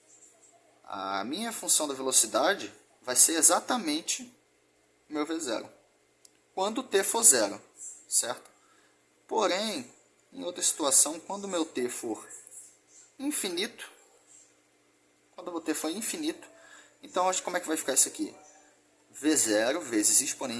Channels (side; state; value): both; identical; correlation 1.00